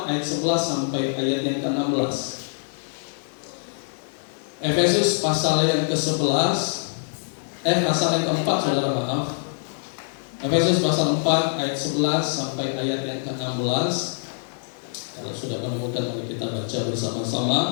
ayat 11 sampai ayat yang ke-16. Efesus pasal yang ke-11, pasal yang ke-4, saudara, maaf. Efesus pasal 4 ayat 11 sampai ayat yang ke-16. Kalau sudah menemukan, mari kita baca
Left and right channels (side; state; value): right; silent; digital silence